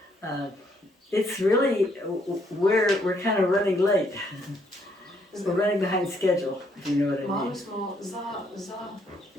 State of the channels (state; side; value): normal; both; correlation 0.70